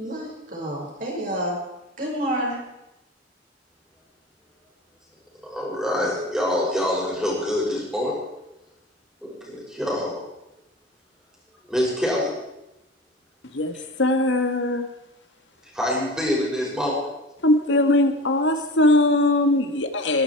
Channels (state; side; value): normal; both; correlation 0.34